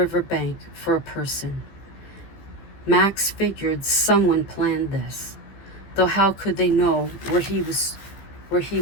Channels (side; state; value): right; late; 15 ms